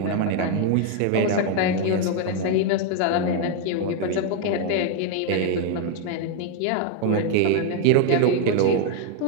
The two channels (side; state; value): both; different; correlation 0.00